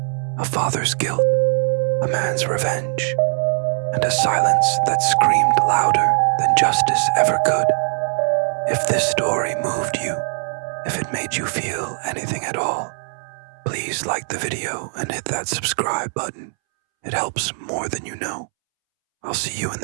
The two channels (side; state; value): left; silent; 65 dB below the other